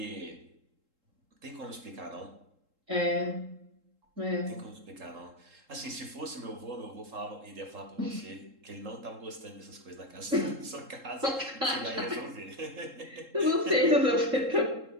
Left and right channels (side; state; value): left; late; 3.7 ms